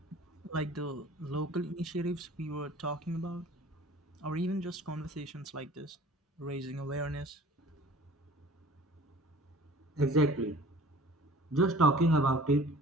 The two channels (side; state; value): both; normal; correlation 0.47